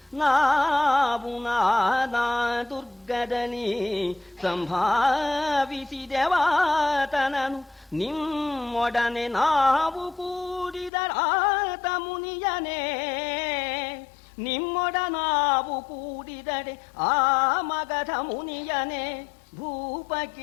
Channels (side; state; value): right; drops out; at 10.9 s